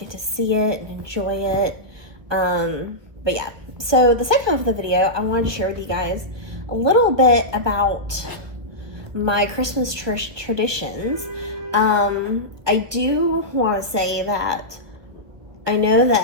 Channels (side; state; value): left; late; 1.4 ms